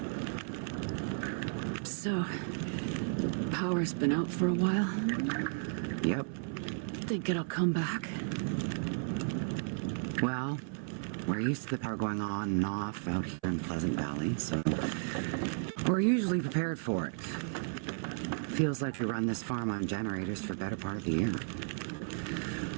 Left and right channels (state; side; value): silent; left; 55 dB below the other